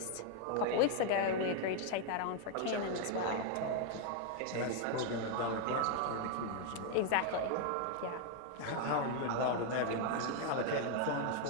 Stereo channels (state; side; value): different; both; correlation 0.00